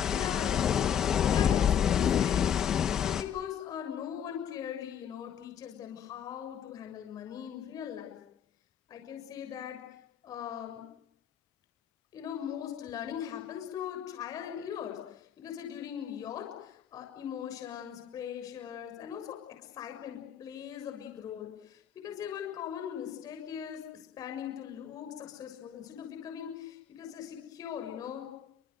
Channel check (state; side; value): quieter; right; 8.8 dB